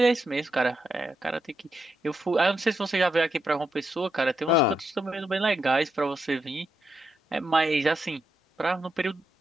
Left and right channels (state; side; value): normal; both; correlation 0.82